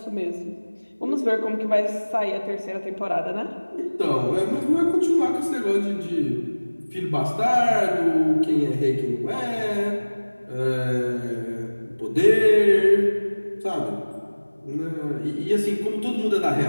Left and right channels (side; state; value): both; inverted; correlation -1.00